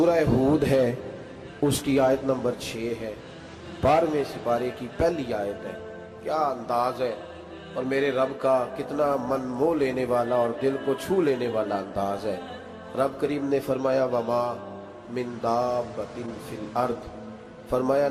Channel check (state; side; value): identical; both; correlation 1.00